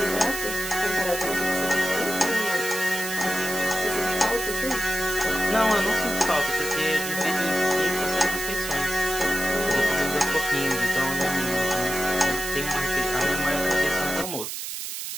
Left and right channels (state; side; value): noise; right; hiss, 6 dB below the sound